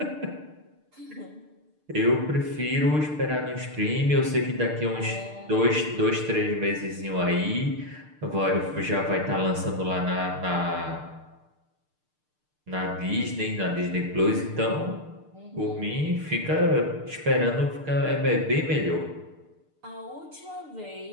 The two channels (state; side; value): late; left; 6.6 ms